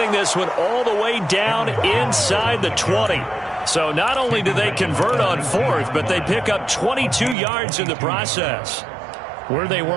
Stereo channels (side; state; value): left; drops out; at 7.4 s